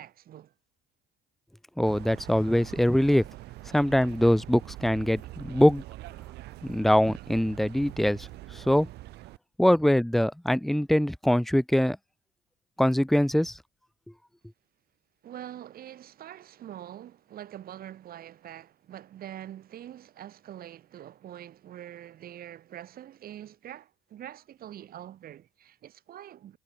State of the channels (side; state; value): both; normal; correlation 0.98